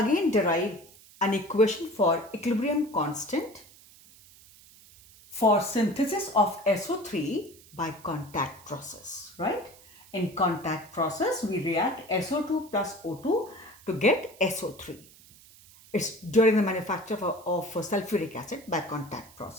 derive an equation for equilibrium constant for synthesis of SO3 by contact process, right? In contact process, we react SO2 plus O2 to get SO3. It's during the manufacture of sulfuric acid by contact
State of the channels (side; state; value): right; noise; hiss, 24 dB below the sound